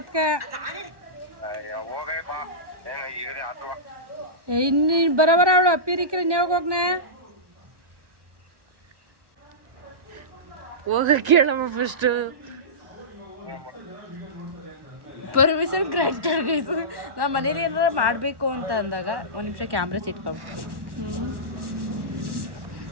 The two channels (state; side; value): late; left; 1.1 ms